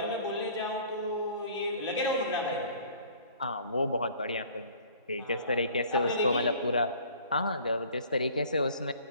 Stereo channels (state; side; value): inverted; both; correlation -0.51